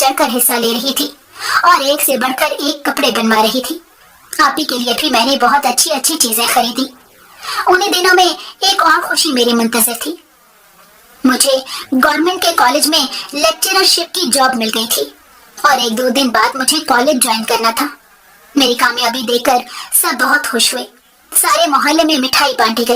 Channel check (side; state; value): both; identical; correlation 1.00